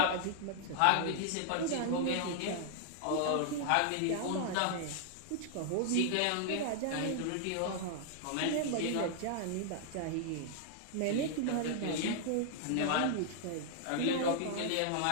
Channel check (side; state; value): both; different; correlation -0.01